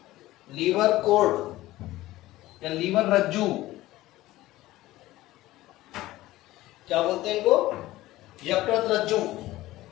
लीवर कोर्ड या लीवर रज्जू। क्या बोलते हैं इनको? यकृत रज्जू।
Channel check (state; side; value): quieter; right; 16.8 dB